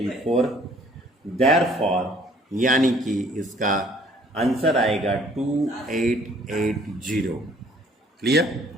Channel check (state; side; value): normal; both; correlation 0.58